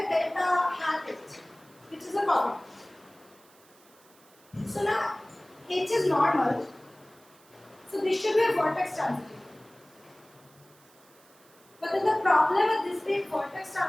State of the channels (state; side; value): noise; right; hiss, 28 dB below the sound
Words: delta hat H, which is a cofactor. So now H is normal. So this should be a vertex transitive. But then the problem with this being vertex